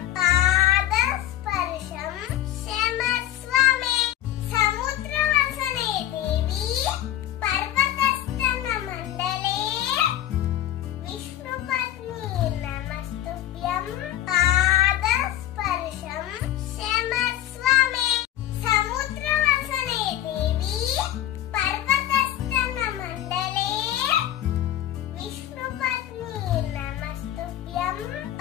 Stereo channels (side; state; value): right; quieter; 12.8 dB